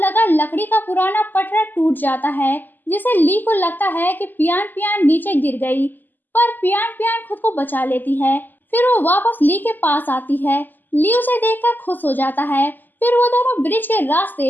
लकड़ी का पुराना पटरा टूट जाता है, जिसे ली को लगता है कि पियान पियान नीचे गिर गई। पर पियान पियान खुद को बचा लेती है। फिर वो वापस ली के पास आती है। ली उसे देखकर खुश हो जाता है। फिर वो दोनों ब्रिज के रास्ते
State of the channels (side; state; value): right; late; 0.088 ms